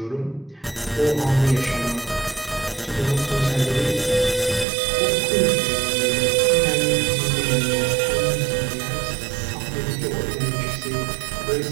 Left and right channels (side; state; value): left; drops out; at 4.7 s